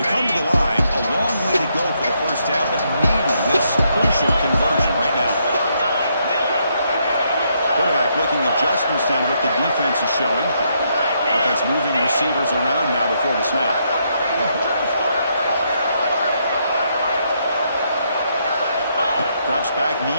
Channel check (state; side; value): inverted; both; correlation -0.76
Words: Adjustments down to what the defense is showing. Offense moving receivers around now before the snap. Drops back,